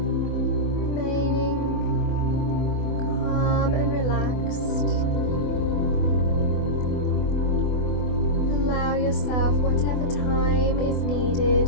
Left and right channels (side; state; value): right; late; 24 ms